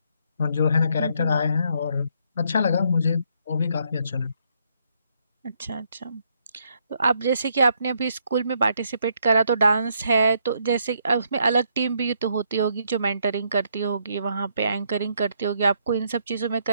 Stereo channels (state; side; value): inverted; both; correlation -0.73